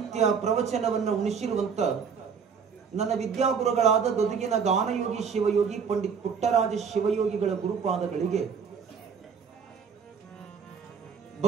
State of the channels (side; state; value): left; quieter; 6.4 dB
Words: ಪ್ರವಚನವನ್ನು ಉಣಿಸಿರುವಂತ ನನ್ನ ವಿದ್ಯಾಗುರುಗಳಾದ ಗದುಗಿನ ಗಾನಯೋಗಿ ಶಿವಯೋಗಿ ಪಂಡಿತ್ ಪುಟ್ಟರಾಜ ಶಿವಯೋಗಿಗಳ ಗುರುಪಾದಗಳಿಗೆ